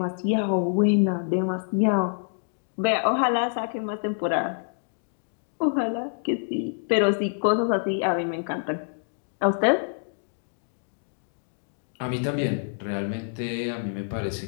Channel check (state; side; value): silent; right; digital silence